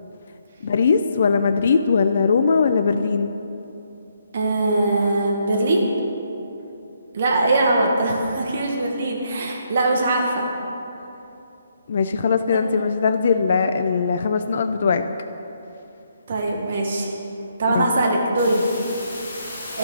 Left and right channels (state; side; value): inverted; both; correlation -0.75